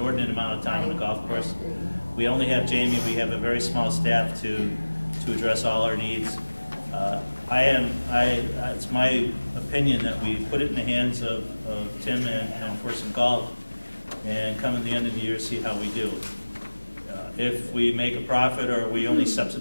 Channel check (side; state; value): both; inverted; correlation -1.00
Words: amount of time on the golf course. We only have Jamie. We have a very small staff to to address all our needs. It's my opinion that we put it in the hands of Tim and Forson Golf, and come at the end of the year, see how we do. If we make a profit or we only